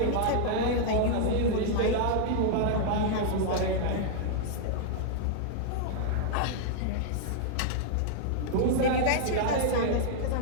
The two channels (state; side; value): different; both; correlation -0.01